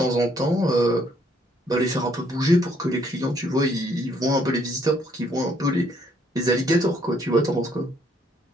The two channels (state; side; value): normal; both; correlation 0.67